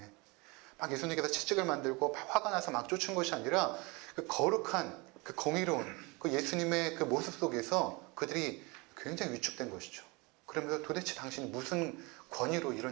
막 예수님께서 채찍을 만들고 막 화가 나서 막 쫓은 것이 아니라 그 거룩한 그 공의로운 그 예수님의 그 모습 속에서 그들이 굉장히 위축된 것이죠. 그러면서 도대체 당신이 무슨 권위로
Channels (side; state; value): left; quieter; 26.8 dB